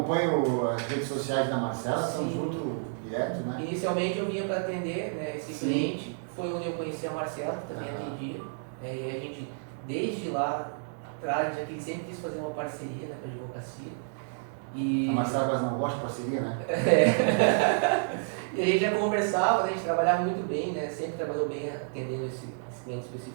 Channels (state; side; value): silent; left; digital silence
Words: as redes sociais da Marcela, estamos juntos direto, né? Inicialmente eu vinha para atender, né, esse cliente, foi onde eu conheci a Marcela, que também atendia, e a gente, desde lá atrás, ele sempre quis fazer uma parceria, né, com a advocacia. E... A Marcela quase não gosta de parceria, né? E a gente já conversava, né, a gente trabalhava muito bem, né, sempre trabalhou bem atendendo esse cliente